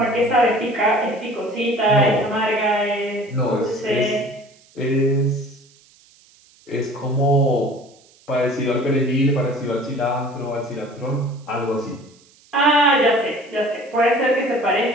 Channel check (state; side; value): noise; right; hiss, 29 dB below the sound